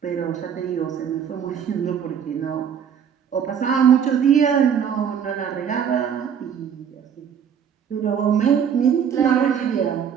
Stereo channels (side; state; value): left; quieter; 8.0 dB